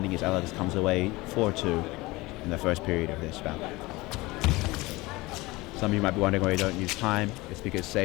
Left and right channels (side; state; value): right; quieter; 21.5 dB